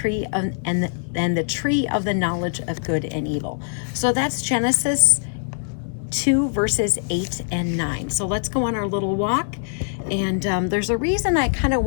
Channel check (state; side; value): silent; right; 64 dB below the other